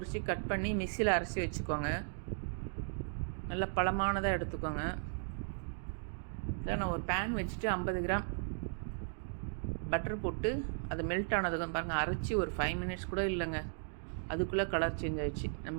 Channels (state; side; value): silent; left; digital silence